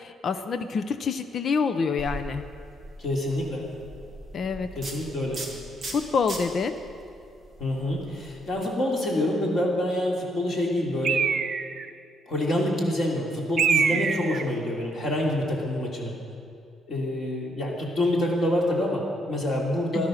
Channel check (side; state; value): both; normal; correlation 0.73